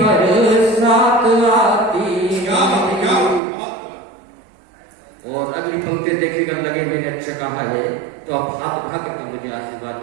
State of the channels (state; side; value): drops out; left; at 3.4 s